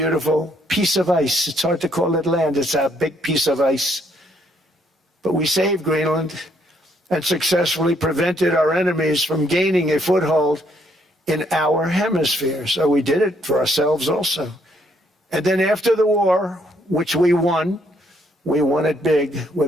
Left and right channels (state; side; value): normal; both; correlation 0.70